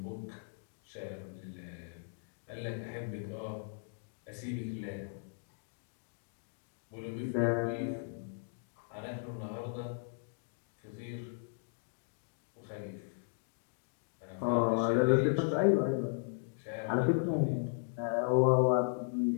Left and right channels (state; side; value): silent; right; digital silence